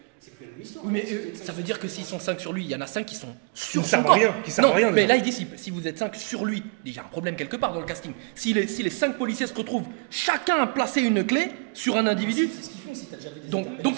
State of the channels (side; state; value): left; quieter; 35.8 dB